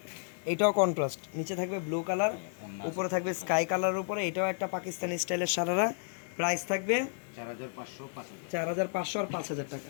এটাও কন্ট্রাস্ট, নিচে থাকবে ব্লু কালার, ওন্না উপরে থাকবে স্কাই কালারের উপরে। এটাও একটা পাকিস্তানি স্টাইলের সারারা। প্রাইস থাকবে 4500 5000। 4500 আর 5000 টাকা।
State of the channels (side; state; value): right; silent; digital silence